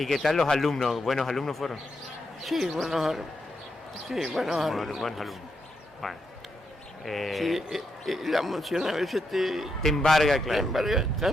tal los alumnos? ¿Buenos alumnos fueron? Sí, buenos alumnos. Buenos alumnos. Bueno. Sí, la emoción a veces te embarga, claro. Te embarga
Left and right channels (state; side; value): normal; both; correlation 0.82